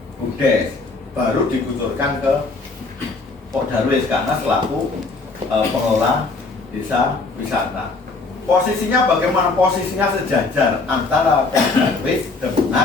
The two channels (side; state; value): right; quieter; 3.8 dB